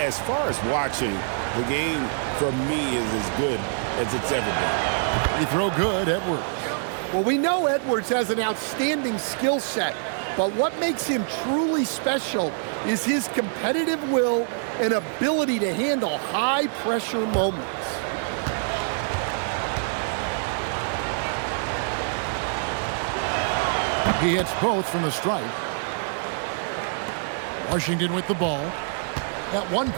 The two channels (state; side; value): silent; left; digital silence